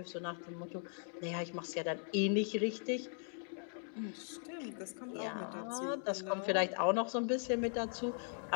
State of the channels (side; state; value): right; silent; 52 dB below the other